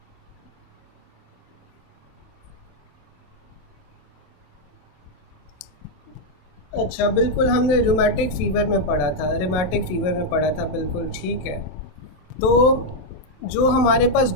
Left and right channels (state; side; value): late; right; 27 ms